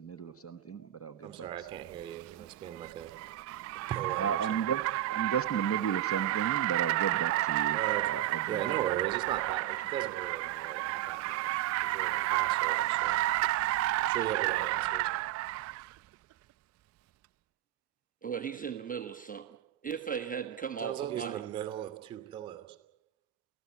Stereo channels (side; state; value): left; quieter; 12.7 dB